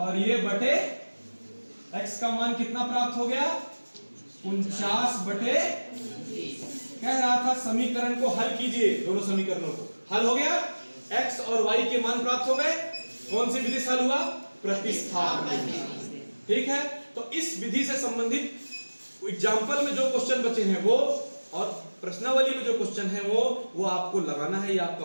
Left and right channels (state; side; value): inverted; both; correlation -1.00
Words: ये बटे x का मान कितना प्राप्त हो गया? 49/29। कह रहा था समीकरण को हल कीजिए, दोनों समीकरणों को हल हो गया, x और y के मान प्राप्त हो गए। कौन सी विधि से हल हुआ? प्रतिस्थापन विधि। ठीक है, तो इस विधि से संबंधित एग्जाम्पल में जो क्वेश्चन बचे हैं वो, और प्रश्नावली में जो क्वेश्चन है वो आपको लगाना है, ये आपका